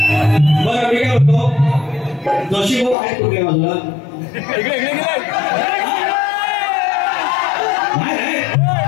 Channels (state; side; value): drops out; right; at 3.0 s